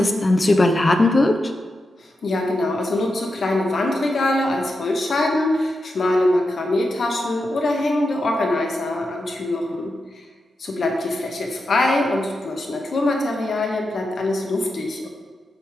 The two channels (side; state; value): both; normal; correlation 0.88